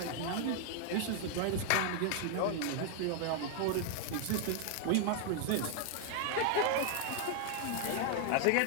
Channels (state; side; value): different; both; correlation 0.00